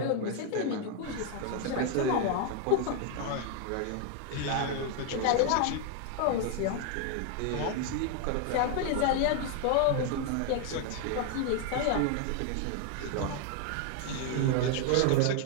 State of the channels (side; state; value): both; different; correlation 0.00